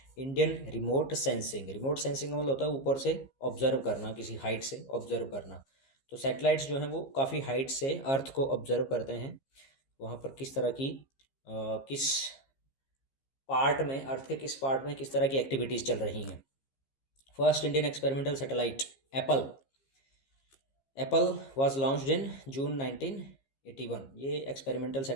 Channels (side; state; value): right; late; 15 ms